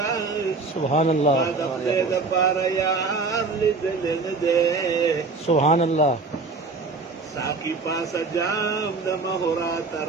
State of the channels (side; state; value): left; quieter; 4.0 dB